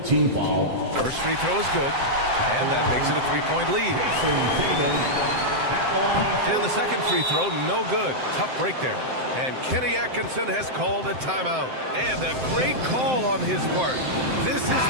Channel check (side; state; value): left; late; 7.7 ms